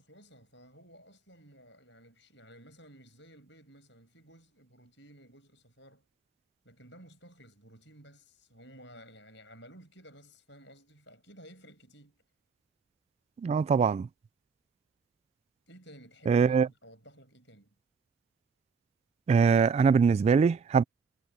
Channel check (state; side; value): quieter; left; 5.5 dB